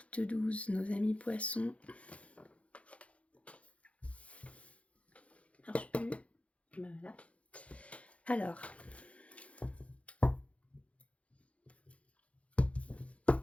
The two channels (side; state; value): right; late; 0.063 ms